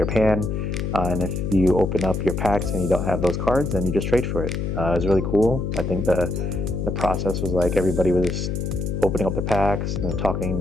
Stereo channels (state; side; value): noise; left; hum, 2 dB below the sound